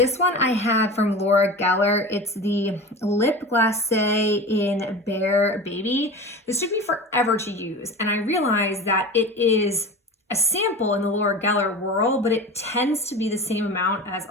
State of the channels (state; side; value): normal; both; correlation 0.32